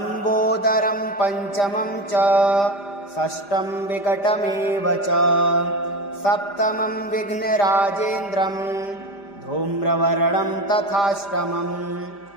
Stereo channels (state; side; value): late; right; 5.0 ms